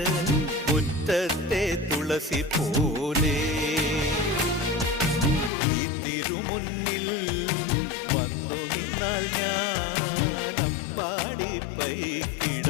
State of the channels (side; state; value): right; drops out; at 5.5 s